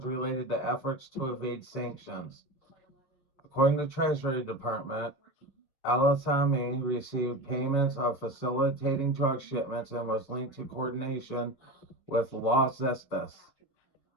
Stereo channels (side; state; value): right; late; 7.2 ms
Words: related to efforts to evade sanctions. According to the Treasury Department, El-Assami received payments of facilitating drug shipments and was linked to coordination with Los Zetas,